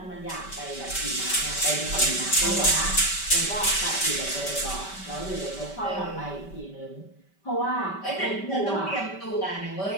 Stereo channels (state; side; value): late; right; 5.2 ms